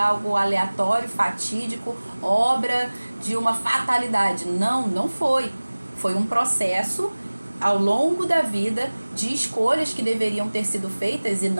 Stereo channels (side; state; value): both; inverted; correlation -1.00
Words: aleatório, fatídico, obra de uma fatalidade. Não, não foi. Foi um processo ao longo da vida de escolhas que deveriam ter sido feitas e